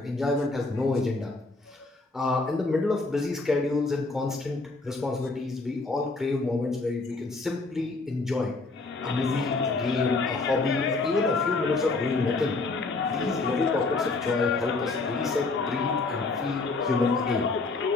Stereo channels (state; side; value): quieter; right; 3.6 dB